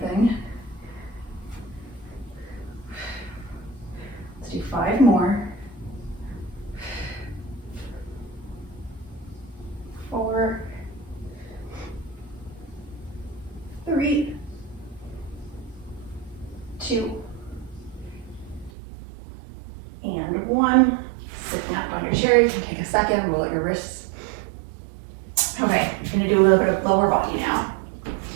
Let's do 5 more. 4, 3, 2, and 1. Sitting up on your chair, you can take a second, roll out your wrists. Okay, I'm gonna do a little bit of lower body now.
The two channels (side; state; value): left; drops out; at 18.7 s